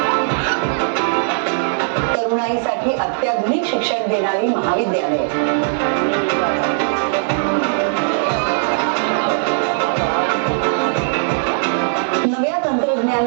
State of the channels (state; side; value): silent; left; digital silence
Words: तरुणाईसाठी अत्याधुनिक शिक्षण देणारी महाविद्यालये, नव्या